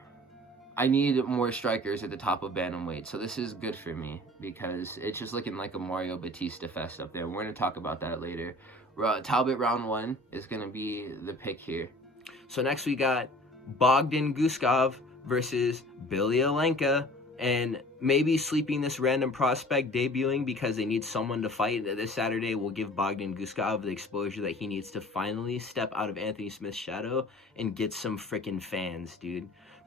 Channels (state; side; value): normal; both; correlation 0.47